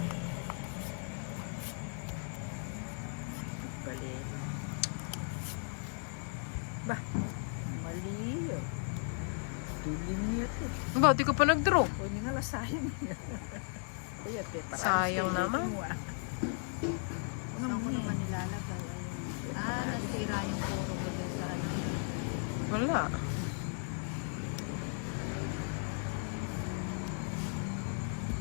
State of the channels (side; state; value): right; silent; 54 dB below the other